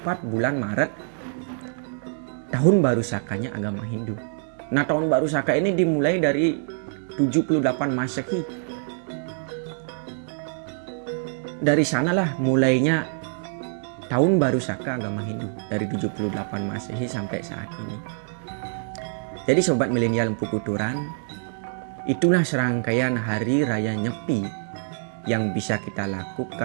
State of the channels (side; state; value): left; silent; digital silence